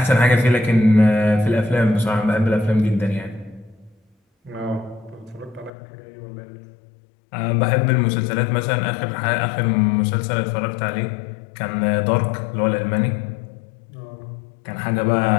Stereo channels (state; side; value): drops out; right; at 5.7 s